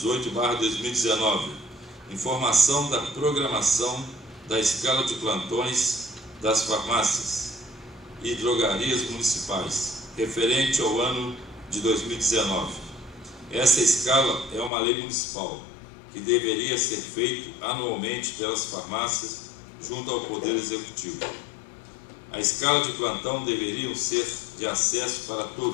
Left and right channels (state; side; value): drops out; right; at 14.7 s